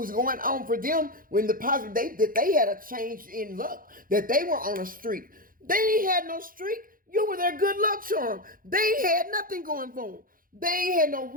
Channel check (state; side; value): late; left; 0.41 ms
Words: going on for them, when the positive, that they had a change in luck, that they were on a streak. They had no streak. You were their good luck charm. They had nothing going for them. They had no